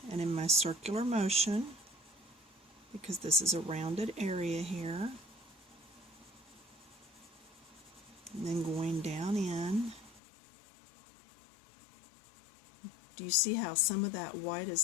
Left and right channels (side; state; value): right; drops out; at 10.2 s